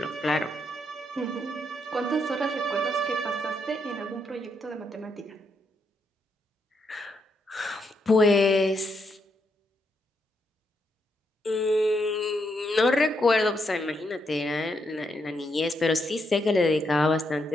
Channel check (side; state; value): both; normal; correlation 0.79